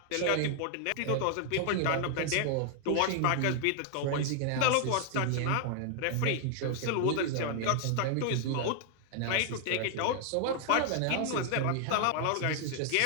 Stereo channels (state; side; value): different; both; correlation 0.00